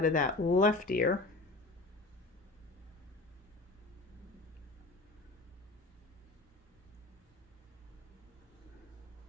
of that left ear.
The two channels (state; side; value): quieter; right; 3.1 dB